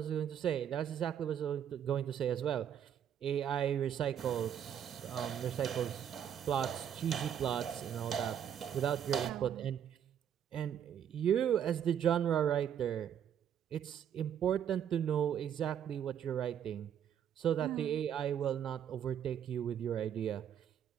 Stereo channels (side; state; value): left; quieter; 9.2 dB